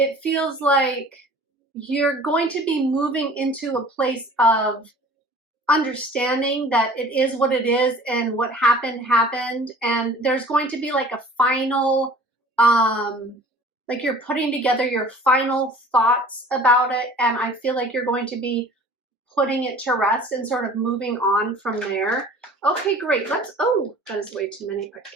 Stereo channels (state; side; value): normal; both; correlation 0.47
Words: feels like you're going to be moving into a place of understanding that it is what it is and what happened. And there's going to be like a final, like you're putting together your final thoughts about it. And I feel like you're going to be putting it to rest and sort of moving on from there. Okay, great. Oh, that is way too many.